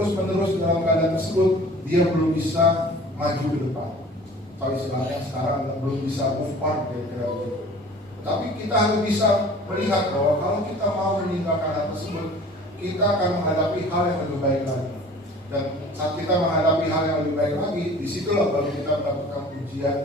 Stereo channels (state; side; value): normal; both; correlation 0.46